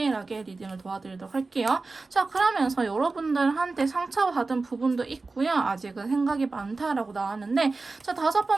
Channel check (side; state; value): left; quieter; 3.7 dB